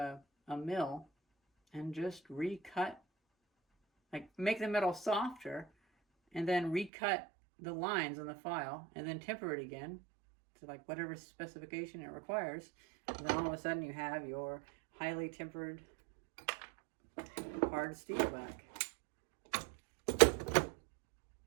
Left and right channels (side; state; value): left; drops out; at 6.9 s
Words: mill, and just recut, like make the metal softer, and then recut the lines on the file, and then temper it again to like whatever specification it requires. And then all of a sudden you have your highly tempered hard steel back.